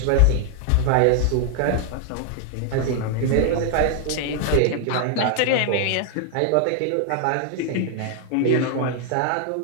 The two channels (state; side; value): different; both; correlation 0.00